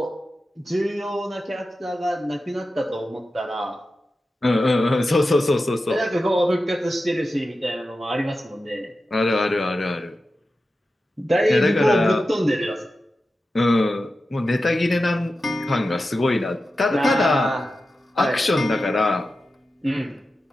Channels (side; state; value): both; normal; correlation 0.92